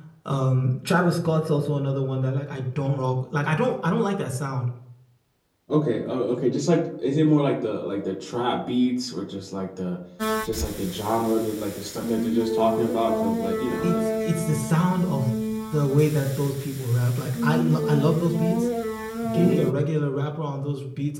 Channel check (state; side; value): identical; both; correlation 1.00